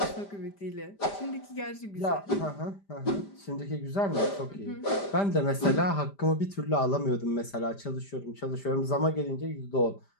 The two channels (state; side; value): late; right; 5.0 ms